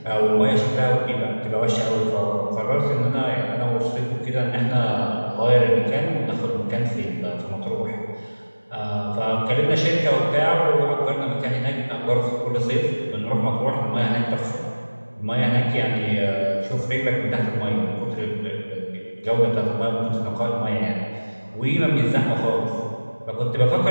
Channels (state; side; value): inverted; both; correlation -1.00